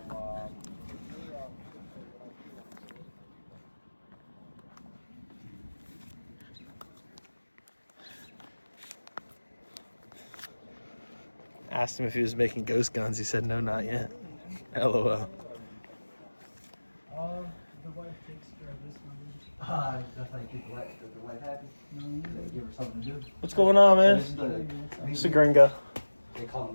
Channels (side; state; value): both; inverted; correlation -1.00